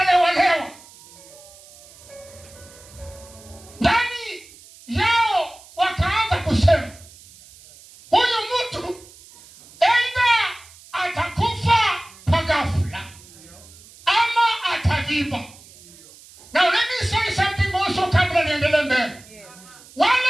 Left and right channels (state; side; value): noise; right; hiss, 22 dB below the sound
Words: Ndani yao wakaanza kusema, huyu mtu aidha atakufa kwa ghafla ama ataviba. Now let me say something also kabla niendelee mbele. Yes. Wale